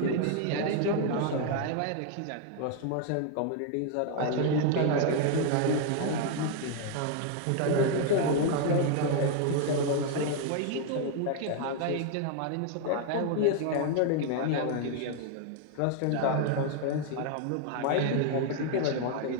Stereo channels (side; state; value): both; different; correlation 0.00